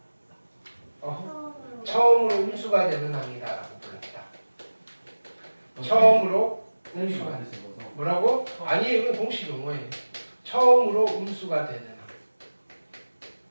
처음으로 음수가 되는 항이다라고 불렀다. 처음으로 음수가 되는 뭐라고? 아니 이건 공식 용어예요. 처음으로 음수가 되는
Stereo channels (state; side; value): inverted; both; correlation -1.00